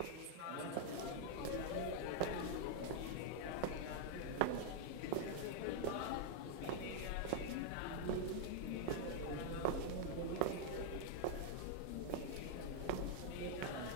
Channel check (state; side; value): different; both; correlation 0.00